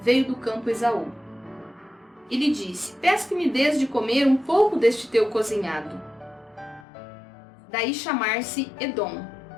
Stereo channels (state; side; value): drops out; right; at 6.9 s